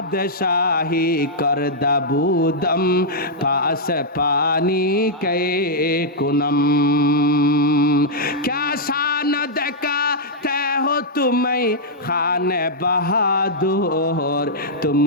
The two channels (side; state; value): both; normal; correlation -0.08